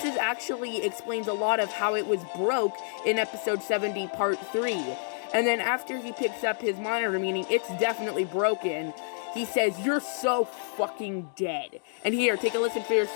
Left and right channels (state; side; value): silent; right; digital silence